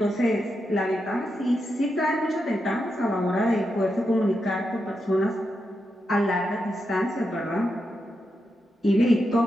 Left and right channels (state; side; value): normal; both; correlation 0.86